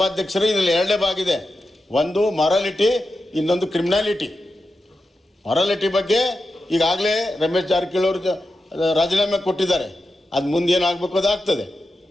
ಇದರಲ್ಲಿ 2 ಭಾಗ ಇದೆ. ಒಂದು ಮೊರಾಲಿಟಿ, ಇನ್ನೊಂದು ಕ್ರಿಮಿನಾಲಿಟಿ. ಮೊರಾಲಿಟಿ ಬಗ್ಗೆ ಈಗಾಗಲೇ ರಮೇಶ್ ಜಾರಕಿಹೊಳಿ ಅವರು ರಾಜೀನಾಮೆ ಕೊಟ್ಟಿದ್ದಾರೆ. ಅದು ಮುಂದೆ ಏನಾಗಬೇಕು ಅದಾಗ್ತದೆ.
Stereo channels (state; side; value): normal; both; correlation 0.90